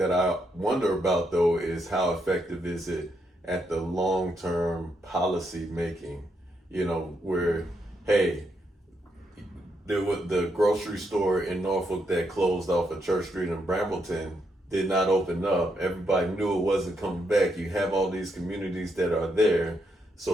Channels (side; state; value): both; normal; correlation 0.79